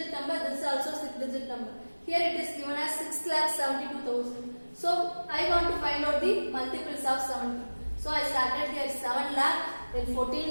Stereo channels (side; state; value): both; inverted; correlation -1.00